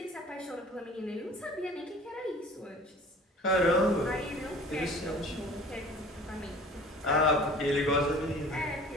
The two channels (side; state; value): both; normal; correlation 0.46